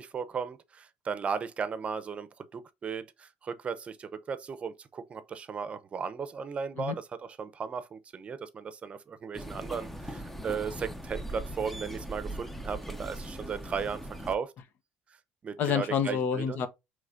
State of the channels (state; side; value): normal; both; correlation 0.58